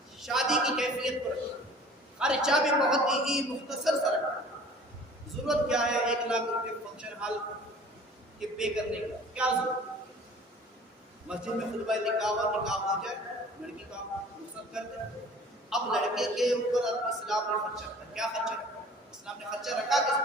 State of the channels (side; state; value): both; normal; correlation 0.48